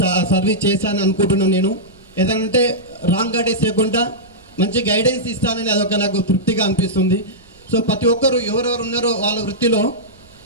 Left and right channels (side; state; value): right; noise; rumble, 29 dB below the sound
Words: సర్వీస్ చేశాను అనుకుంటున్నాను నేను. ఏదంటే రాంగ్ గైడెన్స్ లేకుండా మంచి గైడెన్స్ ఇస్తానని అదొక నాకు తృప్తిగా అనిపిస్తుంది. సో ప్రతి ఒక్కరు ఎవరెవరు ఉన్నారో వాళ్ళ వృత్తిలో